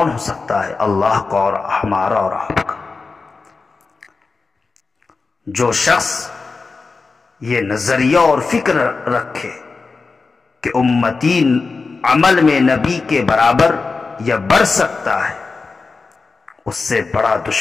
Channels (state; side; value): quieter; right; 4.3 dB